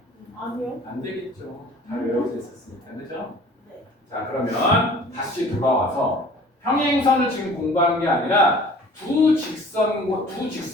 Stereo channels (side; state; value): both; normal; correlation 0.48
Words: 아니요. 안 되겠죠. 잘 외워져 있었으니까, 그죠? 네. 자, 그러면 다시 돌아와서 평행선을 지금 공부하는 게 아니라 두